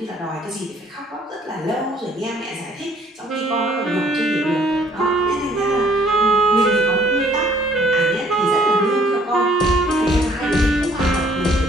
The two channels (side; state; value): both; normal; correlation 0.60